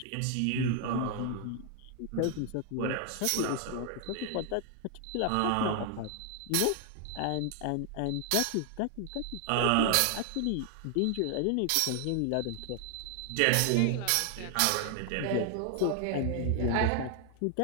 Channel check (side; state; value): both; different; correlation 0.00